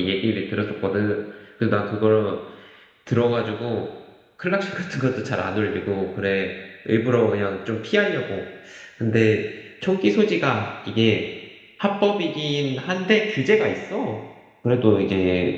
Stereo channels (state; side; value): identical; both; correlation 1.00